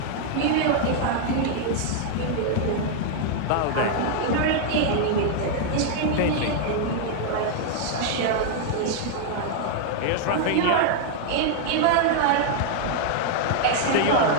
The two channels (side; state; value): both; different; correlation 0.00